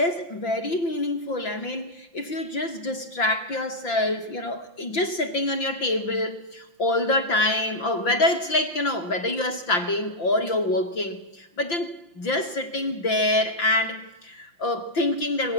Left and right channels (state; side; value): late; right; 5.8 ms